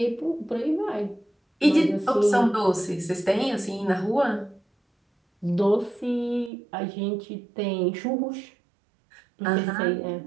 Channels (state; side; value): drops out; left; at 6.5 s